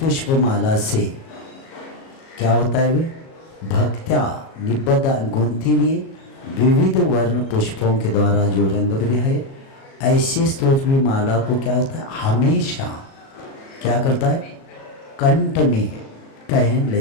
माला से क्या होता है, वे भक्त्या निबद्ध गुंथी हुई विविध वर्ण पुष्पों के द्वारा जो रंग बिरंगे है, ऐसे स्तोत्र की माला को क्या होता है, हमेशा क्या करता है, कंठ में पहन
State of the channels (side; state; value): right; late; 37 ms